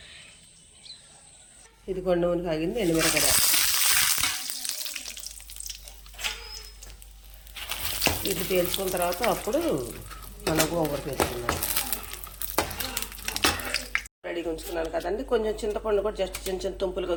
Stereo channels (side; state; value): both; identical; correlation 1.00